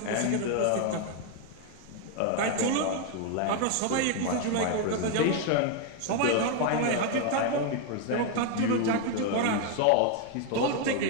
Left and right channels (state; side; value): different; both; correlation 0.01